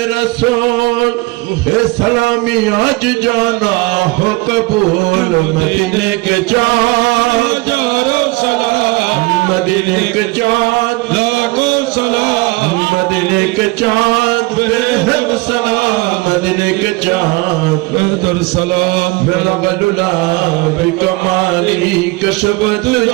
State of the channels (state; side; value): quieter; left; 23.3 dB